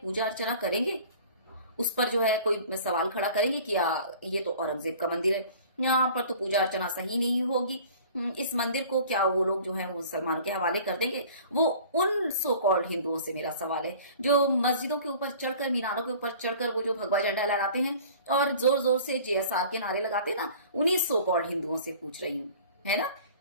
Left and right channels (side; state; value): both; inverted; correlation -0.46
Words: अर्चना करेंगे, उस पर जो है कोई सवाल खड़ा करेंगे कि ये तो औरंगजेब का मंदिर है, यहाँ पर तो पूजा अर्चना सही नहीं होगी, इस मंदिर को क्या वो लोग जो है वो मुसलमान के हवाले कर देंगे। वो उन सो कॉल्ड हिंदुओं से मेरा सवाल है जो मस्जिदों के ऊपर चढ़कर, मीनारों के ऊपर चढ़कर वो जो भगवा झंडा लहराते हैं और जोर जोर से JSR के नारे लगाते हैं ना, उन्हीं सो कॉल्ड हिंदुओं से पूछ रही हूँ, है ना।